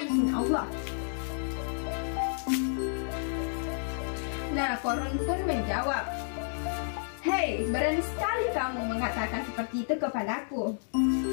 izin Allah. Nah, Qarun pun menjawab, hei, berani sekali kamu mengatakan seperti itu kepadaku.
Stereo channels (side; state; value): right; silent; digital silence